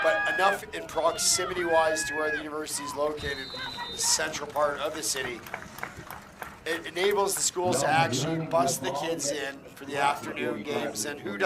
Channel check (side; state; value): both; identical; correlation 1.00